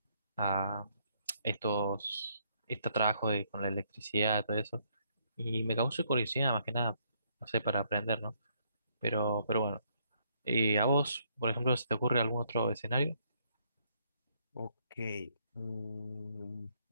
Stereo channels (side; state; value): both; inverted; correlation -0.70